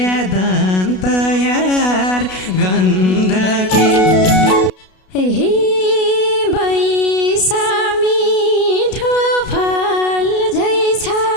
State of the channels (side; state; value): right; late; 32 ms